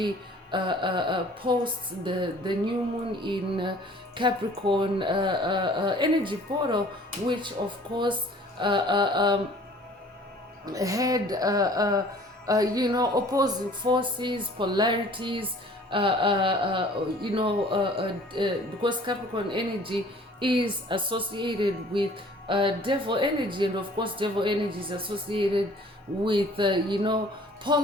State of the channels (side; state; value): both; normal; correlation 0.51